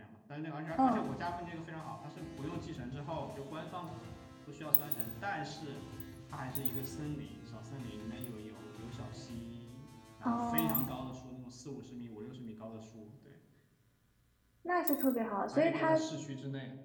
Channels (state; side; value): identical; both; correlation 1.00